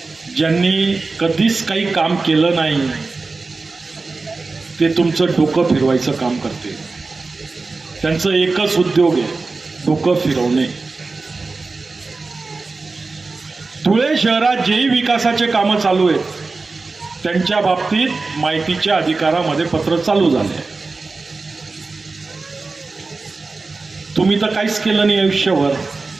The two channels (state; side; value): quieter; left; 3.8 dB